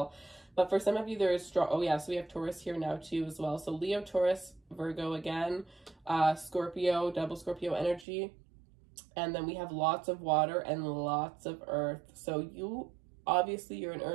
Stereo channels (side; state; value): left; drops out; at 8.1 s